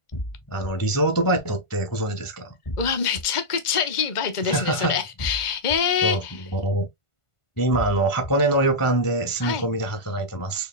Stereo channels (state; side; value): late; right; 1.5 ms